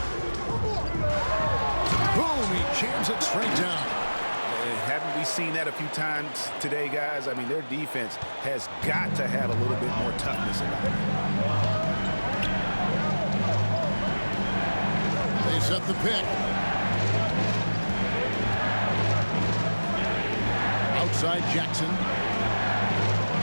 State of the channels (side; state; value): both; inverted; correlation -1.00